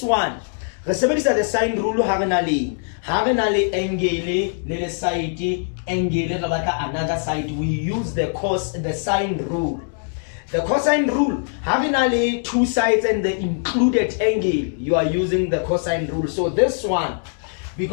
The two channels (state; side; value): silent; right; digital silence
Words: one, the sine rule angle le side angle another side. We use the sine rule. The cosine rule, having two sides and the included angle, you are using the cosine rule. So this one,